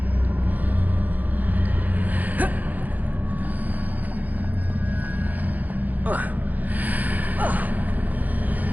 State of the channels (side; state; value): left; late; 0.081 ms